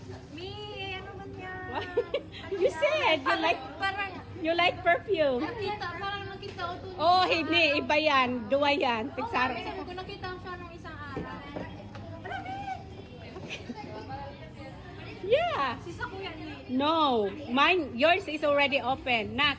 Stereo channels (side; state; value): both; identical; correlation 1.00